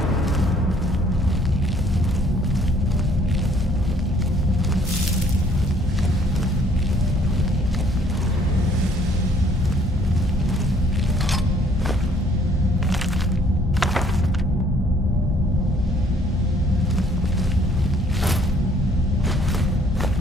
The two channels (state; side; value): normal; both; correlation 0.61